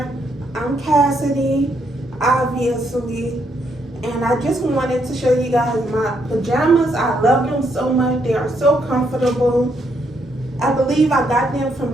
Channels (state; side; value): normal; both; correlation 0.75